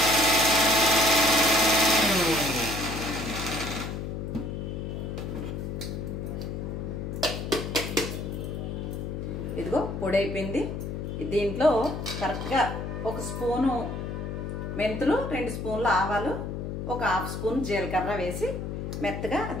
ఇదిగో పొడి అయిపోయింది. దీంట్లో కరెక్ట్గా 1 స్పూను మెంతులు, 2 స్పూన్లు ఆవాలు, 1/2 స్పూన్ జీలకర్ర వేసి మెత్తగా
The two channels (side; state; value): left; noise; hum, 5 dB below the sound